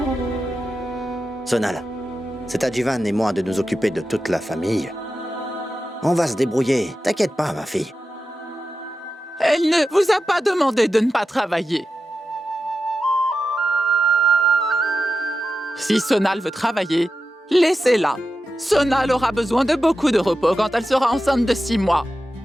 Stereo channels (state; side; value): normal; both; correlation 0.91